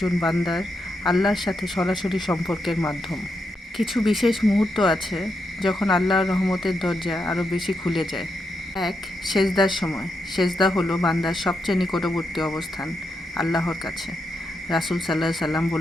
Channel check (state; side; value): normal; both; correlation 0.83